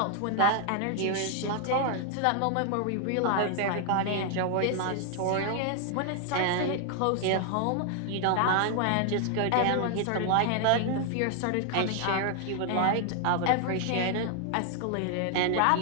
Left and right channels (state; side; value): different; both; correlation 0.00